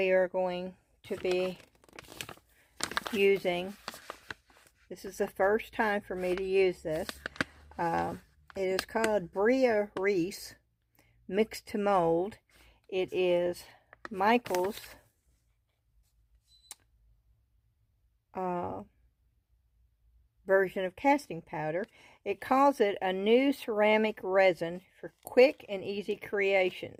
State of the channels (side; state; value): both; identical; correlation 1.00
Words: are going to be using, this is the first time for me to use this. It is called Bria Reese Mix to Mold. It is Michael's version of casting powder. It calls it a new ceramic resin for quick and easy